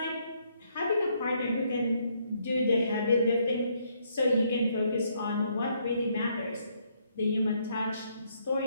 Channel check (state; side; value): inverted; both; correlation -0.72